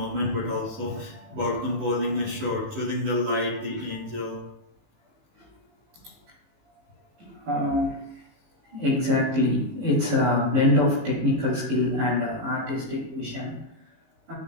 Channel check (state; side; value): late; left; 19 ms